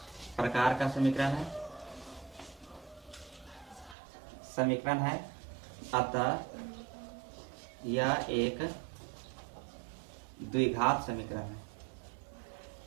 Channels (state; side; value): drops out; left; at 4.0 s